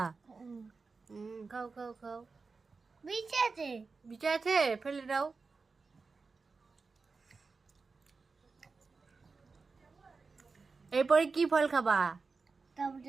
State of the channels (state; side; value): quieter; left; 4.4 dB